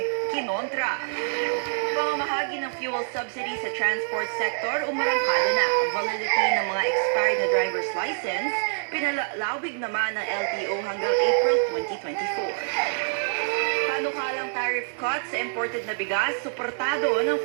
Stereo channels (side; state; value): left; silent; digital silence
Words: kinontra. Pamamahagi ng fuel subsidy sa transport sector, umarangkada na. Validity ng mga expired na driver's license, pinalalawig naman ng LTO hanggang April 2024. Panukalang tariff cuts sa imported na bigas, suportado ng